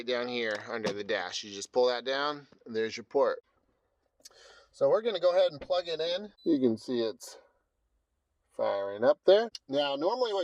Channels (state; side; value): identical; both; correlation 1.00